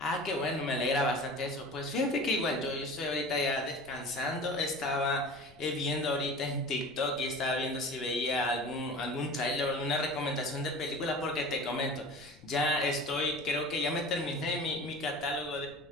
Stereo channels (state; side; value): noise; left; rumble, 24 dB below the sound